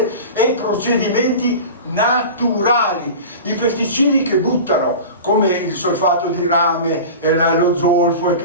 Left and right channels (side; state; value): both; inverted; correlation -0.33